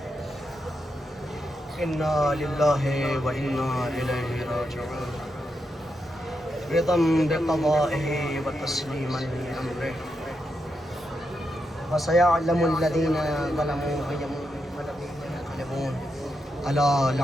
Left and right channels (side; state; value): both; normal; correlation 0.84